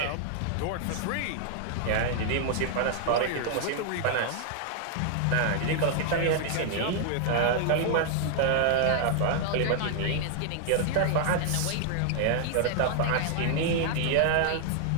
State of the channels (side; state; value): both; different; correlation 0.00